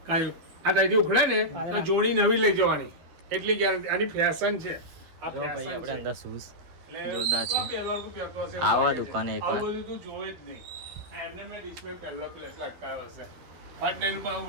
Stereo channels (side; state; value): left; late; 12 ms